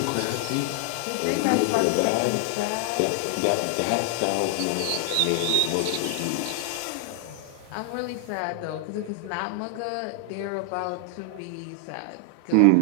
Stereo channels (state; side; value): different; both; correlation 0.00